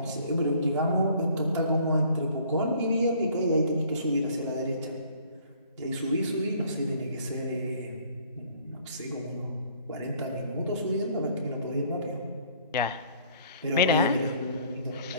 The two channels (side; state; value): both; inverted; correlation -0.57